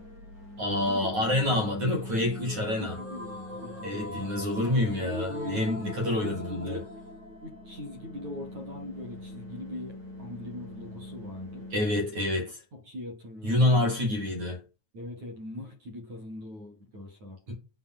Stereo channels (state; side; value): late; left; 9.4 ms